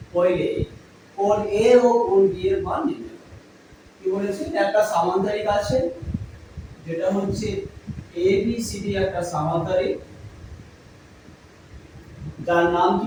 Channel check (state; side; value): identical; both; correlation 1.00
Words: পहिले কোণ A ও কোণ B এর মান নির্ণয় করো। কি বলেছি একটা সামান্তরিক আছে যেটা হচ্ছে A B C D একটা সামান্তরিক যার নাম